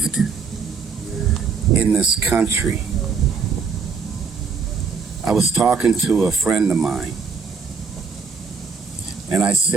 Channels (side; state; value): left; quieter; 5.5 dB